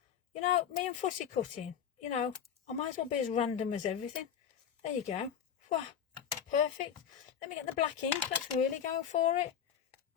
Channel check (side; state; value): right; quieter; 8.4 dB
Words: You know, me and fussy cutting, you know, I might as well be as random as everything. There you go. Wow, perfect. Let me get the black ink. Let's really go for it.